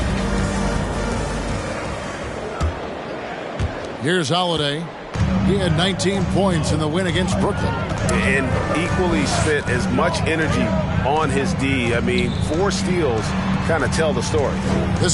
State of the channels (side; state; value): both; identical; correlation 1.00